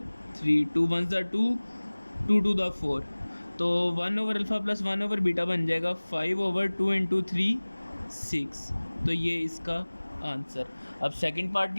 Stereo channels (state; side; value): inverted; both; correlation -1.00